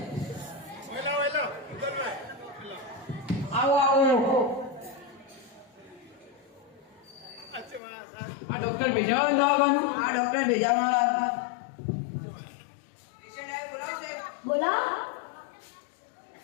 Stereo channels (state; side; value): drops out; right; at 7.8 s